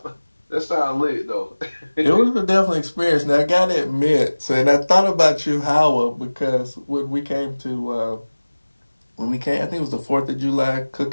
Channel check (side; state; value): both; inverted; correlation -1.00